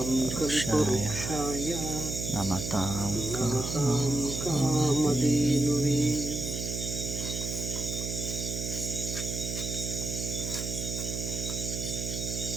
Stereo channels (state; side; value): noise; right; hum, 4 dB below the sound